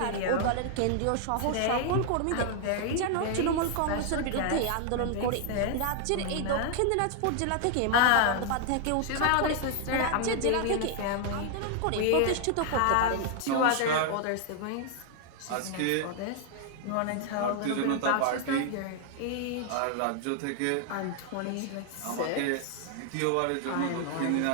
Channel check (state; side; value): different; both; correlation 0.00